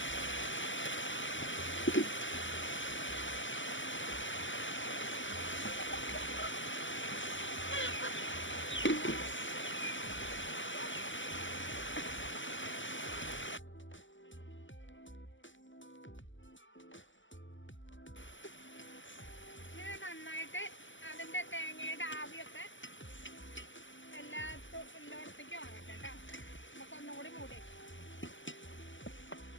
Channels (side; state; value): right; late; 0.55 ms